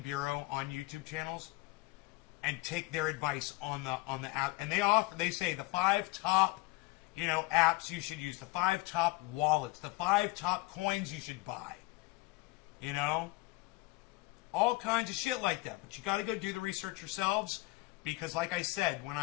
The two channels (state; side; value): quieter; right; 21.4 dB